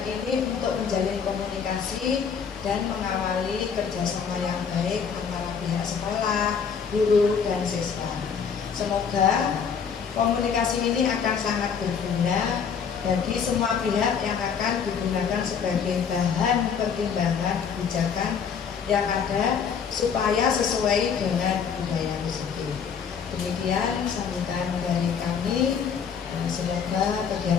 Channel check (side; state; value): right; quieter; 6.7 dB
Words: ini untuk menjalin komunikasi dan mengawali kerjasama yang baik antara pihak sekolah, guru, dan siswa. Semoga komunikasi ini akan sangat berguna bagi semua pihak yang akan digunakan sebagai bahan pertimbangan kebijakan yang ada supaya sesuai dengan budaya positif. Demikian sambutan dari kami. Semoga